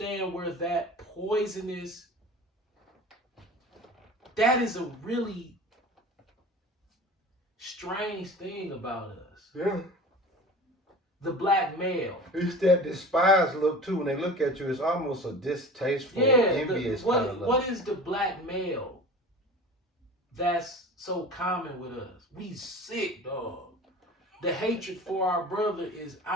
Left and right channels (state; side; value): normal; both; correlation 0.38